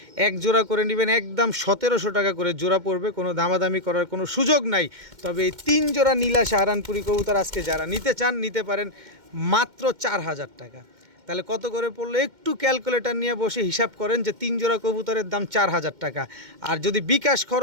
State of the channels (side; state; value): left; late; 2.1 ms